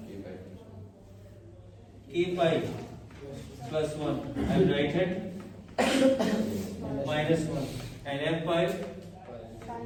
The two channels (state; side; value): identical; both; correlation 1.00